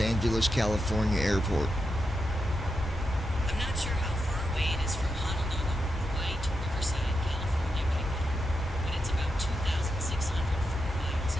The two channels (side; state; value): both; normal; correlation 0.86